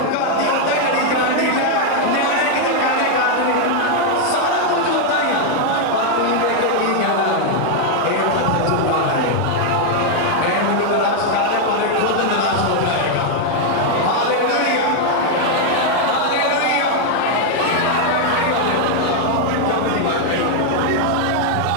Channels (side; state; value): both; different; correlation 0.00